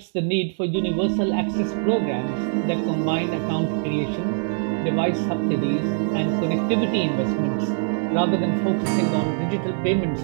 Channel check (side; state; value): left; silent; 63 dB below the other